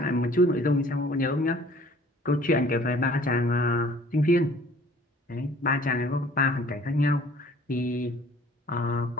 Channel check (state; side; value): normal; both; correlation 0.53